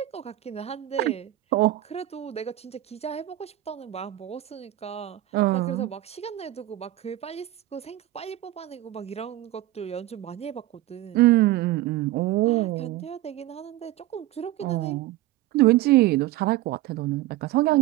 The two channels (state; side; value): quieter; left; 15.5 dB